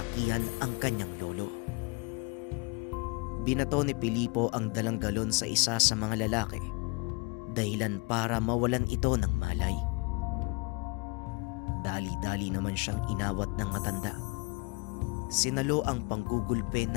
ang kanyang lolo. Binato ni Filipo ang dalang galon sa isa sa mga lalaki dahilan para mawalan ito ng malay. Dali-dali naman siyang inawat ng matanda. Sinalo ang panggugulpe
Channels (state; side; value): quieter; right; 28.8 dB